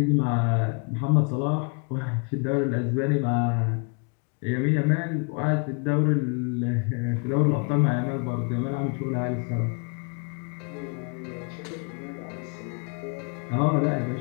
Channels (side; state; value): right; quieter; 37.1 dB